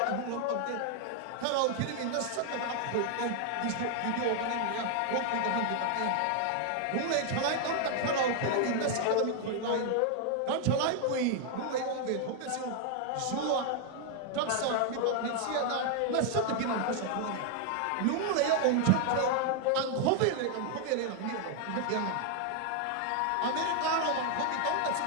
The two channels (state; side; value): different; both; correlation 0.00